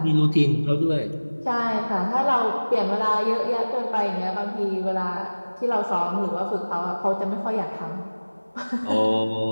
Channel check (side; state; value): both; inverted; correlation -1.00